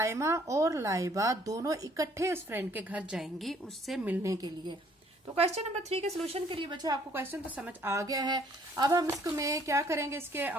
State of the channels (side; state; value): both; normal; correlation 0.61